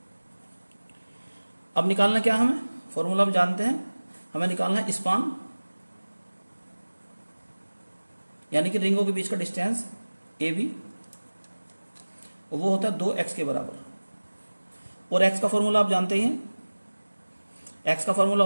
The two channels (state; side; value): inverted; both; correlation -1.00